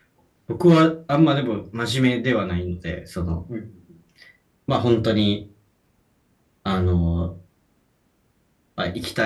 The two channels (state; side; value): identical; both; correlation 1.00